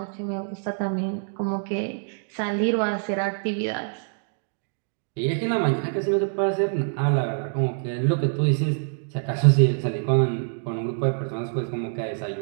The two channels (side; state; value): left; silent; digital silence